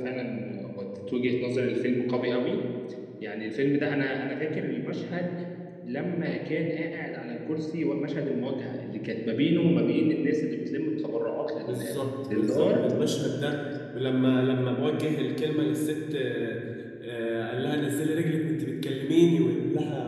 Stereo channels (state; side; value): identical; both; correlation 1.00